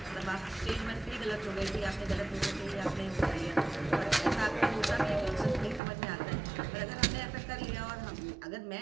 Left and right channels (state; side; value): drops out; left; at 5.8 s